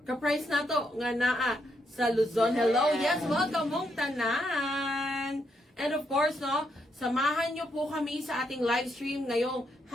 ka-price nato nga naa sa Luzon. Hello, yes, welcome mong tanan. And of course, no, samahan nyo po kami sa ating live stream ngayong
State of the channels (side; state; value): both; normal; correlation 0.78